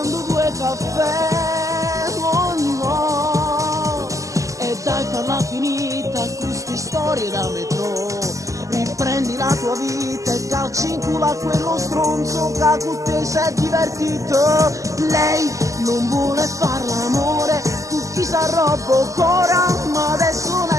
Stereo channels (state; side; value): late; left; 0.16 ms